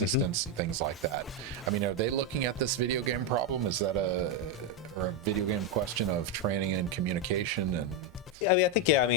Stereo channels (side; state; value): right; noise; hum, 28 dB below the sound